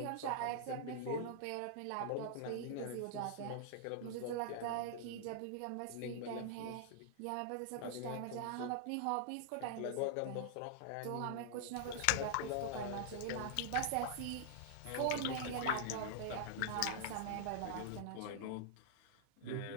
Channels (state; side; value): different; both; correlation -0.01